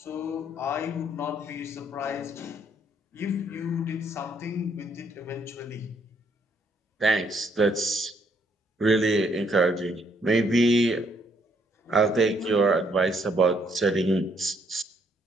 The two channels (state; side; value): normal; both; correlation 0.69